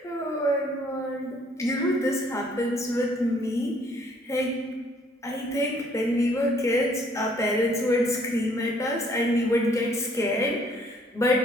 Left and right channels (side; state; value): both; normal; correlation 0.62